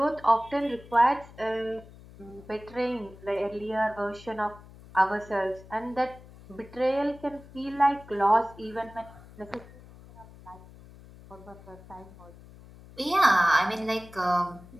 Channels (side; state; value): left; noise; hum, 20 dB below the sound